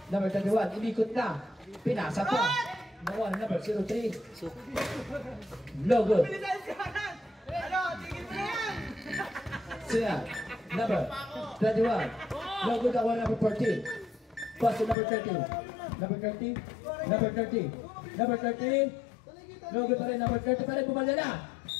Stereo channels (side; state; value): right; drops out; at 15.0 s